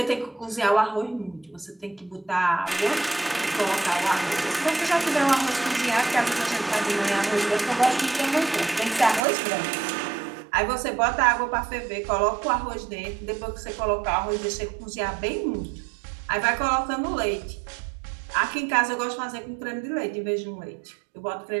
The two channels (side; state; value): left; drops out; at 9.2 s